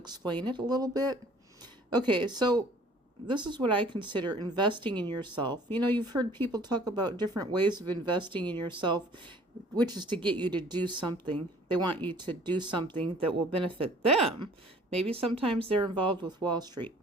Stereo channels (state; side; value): normal; both; correlation 0.54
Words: it a little bit. Okay, so this is what I consider investing in yourself. You know, you've heard people talk about different ways of investing in yourself, which is to get you to do something. They want you to do something that will benefit them. Maybe sometimes they're involved with Wall Street.